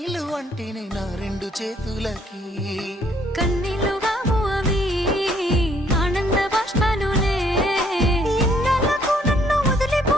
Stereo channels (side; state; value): both; normal; correlation 0.66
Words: అంటేనే నా 2 చేతులకి కన్నీళ్ళు కావు అవి ఆనంద బాష్పాలులే. ఇన్నాళ్ళకు నన్ను